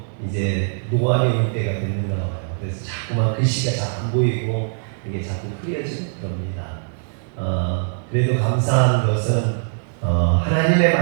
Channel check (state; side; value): silent; left; digital silence